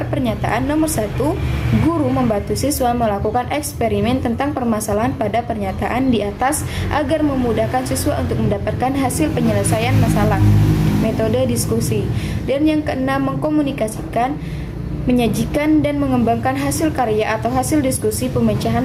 pernyataan. Nomor 1, guru membantu siswa melakukan eksperimen tentang permasalahan pada pernyataan di atas agar memudahkan siswa untuk mendapatkan hasil penyelesaian masalah. Metode diskusi. Dan yang keenam, mengkomunikasikan, menyajikan dan mengembangkan hasil karya atau hasil diskusi pemecahan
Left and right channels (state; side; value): identical; both; correlation 1.00